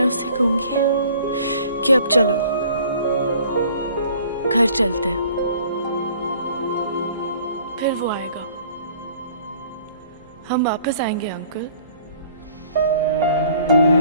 उसे कहूंगी कि अब चलो, घर चलते हैं। फिर वो आएगा, हम वापस आएंगे अंकल।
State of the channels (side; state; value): both; inverted; correlation -0.54